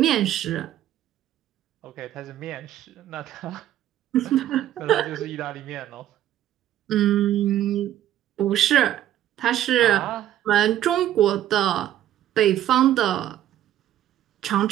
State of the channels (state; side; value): quieter; left; 12.1 dB